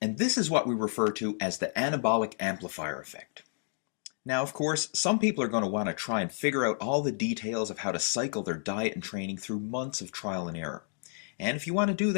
And this is what we refer to as the anabolic amplifier effect. Now, of course, some people are going to want to try and figure out all the details of how to cycle their diet and training through months of trial and error. And if you want to do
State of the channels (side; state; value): right; silent; digital silence